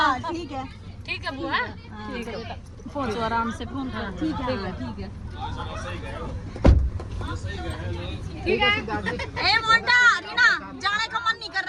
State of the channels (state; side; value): identical; both; correlation 1.00